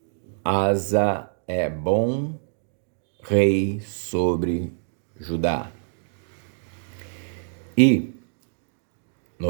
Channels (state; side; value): silent; left; digital silence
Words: Asa é bom rei sobre Judá. E